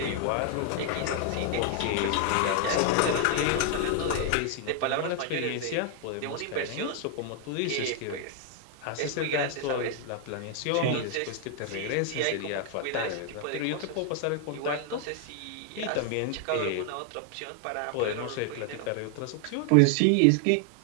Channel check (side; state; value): both; different; correlation 0.00